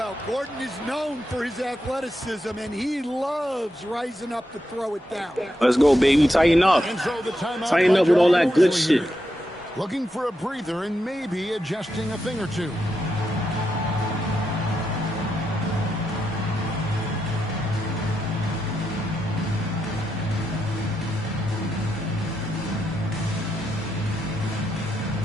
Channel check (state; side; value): normal; both; correlation 0.84